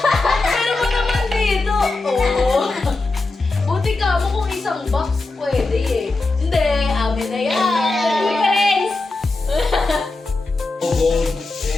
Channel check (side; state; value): right; quieter; 3.3 dB